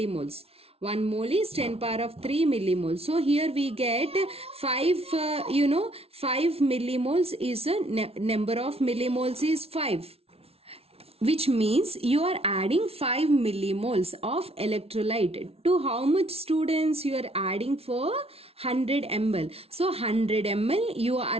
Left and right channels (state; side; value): late; left; 0.29 ms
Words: 1 mole is 10 power of 3 millimoles. So here we get 5, 5 millimoles is a number of millimoles is 5. Which means you are adding 5 millimoles of electrolyte. To how much, students? You are adding for 100 ml. So 100 ml you